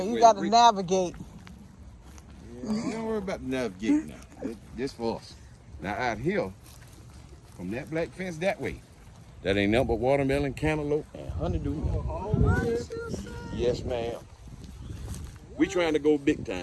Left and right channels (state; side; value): identical; both; correlation 1.00